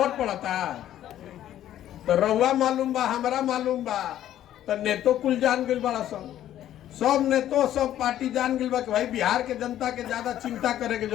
पड़ता। तो रउआ मालूम बा, हमरा मालूम बा, तो नेतो कुल जान गइल बड़ा सब नेतो, सब पार्टी जान गइल बा कि भाई बिहार के जनता के ज्यादा चिंता करे के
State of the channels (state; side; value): quieter; right; 12.0 dB